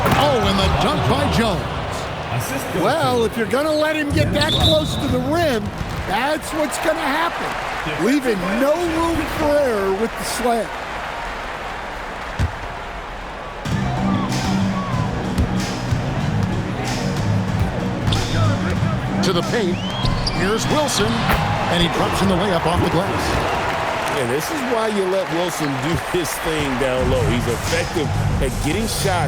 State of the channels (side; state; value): both; identical; correlation 1.00